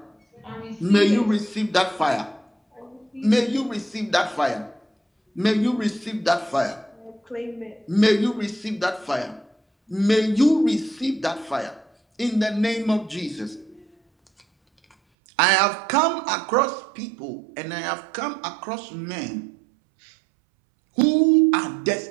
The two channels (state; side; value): drops out; left; at 15.0 s